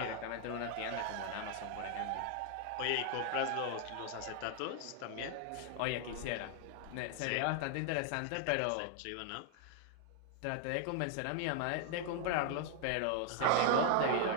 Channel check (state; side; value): different; both; correlation 0.00